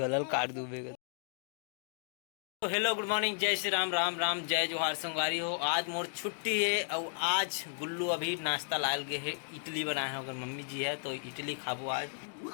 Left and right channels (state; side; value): silent; right; digital silence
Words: काट दूबेगा। तो हेलो गुड मॉर्निंग, जय श्री राम, राम राम, जय जोहार संगवारी हो। आज मोर छुट्टी है और आज गुल्लू अभी नाश्ता लाल गए है। इडली बनाए हैं, अगर मम्मी जी है तो इडली खाबो। आज